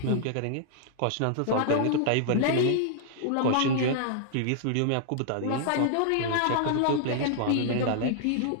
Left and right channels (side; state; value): both; different; correlation -0.01